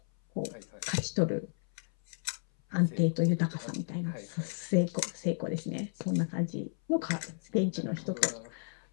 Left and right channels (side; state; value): right; silent; 56 dB below the other